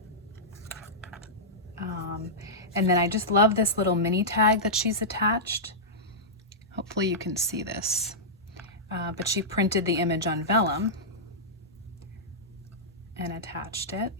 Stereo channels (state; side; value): normal; both; correlation -0.12